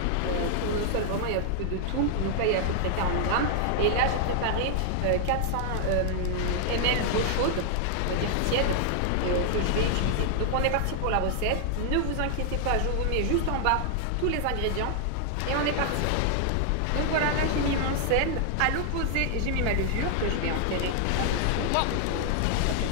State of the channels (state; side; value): different; both; correlation 0.00